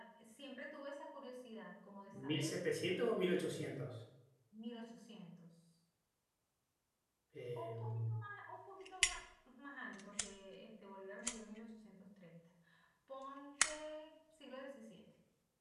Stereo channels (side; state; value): both; identical; correlation 1.00